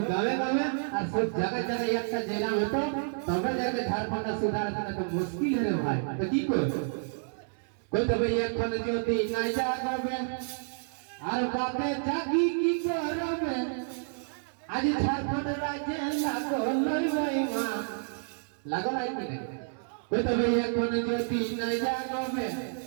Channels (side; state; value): left; silent; 58 dB below the other